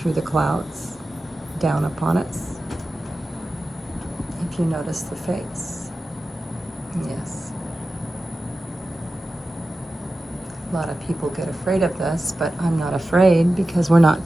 the clouds, down upon us. If you notice the face, yes. A lot of people get afraid of this, but I'm not afraid because we're not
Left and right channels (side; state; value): both; normal; correlation 0.94